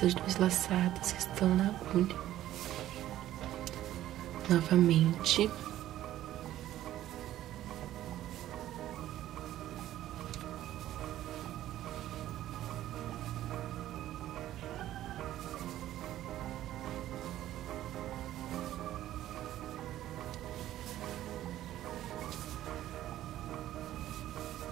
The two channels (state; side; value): quieter; left; 13.4 dB